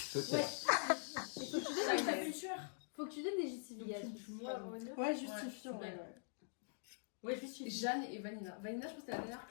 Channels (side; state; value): right; silent; digital silence